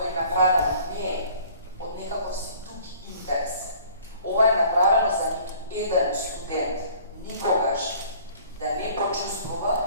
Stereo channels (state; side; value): inverted; both; correlation -0.52